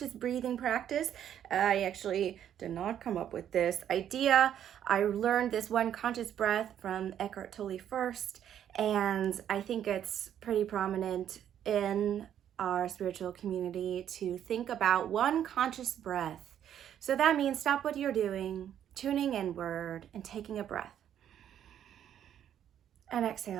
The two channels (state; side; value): quieter; left; 10.0 dB